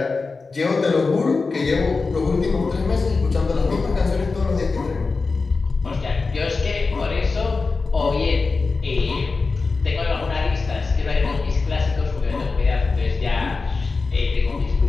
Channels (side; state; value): right; quieter; 4.1 dB